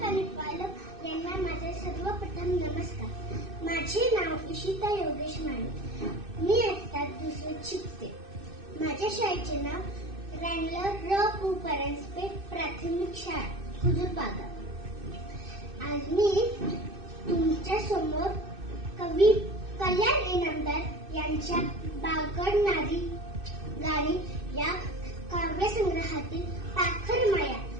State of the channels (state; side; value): late; left; 2.6 ms